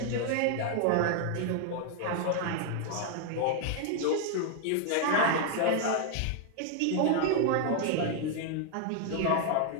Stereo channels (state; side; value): different; both; correlation 0.00